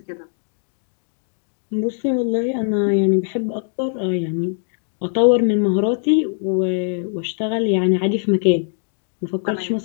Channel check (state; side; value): silent; right; digital silence